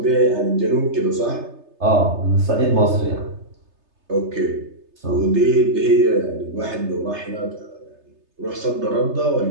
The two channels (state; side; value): late; left; 3.3 ms